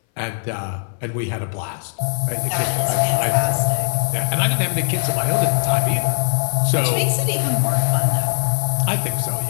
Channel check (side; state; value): right; silent; 62 dB below the other